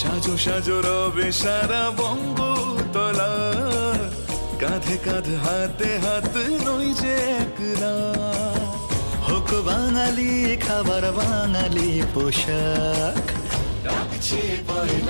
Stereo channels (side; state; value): both; inverted; correlation -1.00